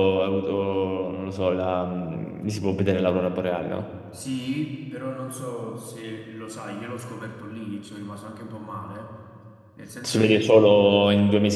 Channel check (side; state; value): both; identical; correlation 1.00